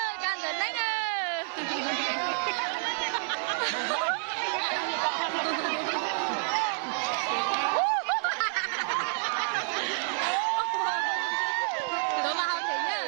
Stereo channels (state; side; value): silent; left; 58 dB below the other